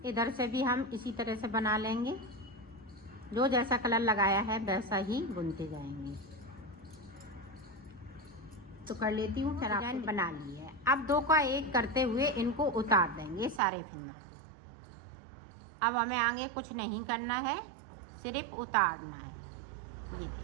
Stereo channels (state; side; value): drops out; left; at 13.6 s